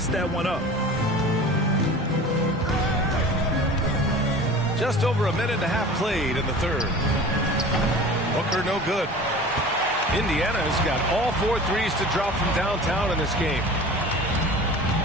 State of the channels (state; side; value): normal; both; correlation 0.39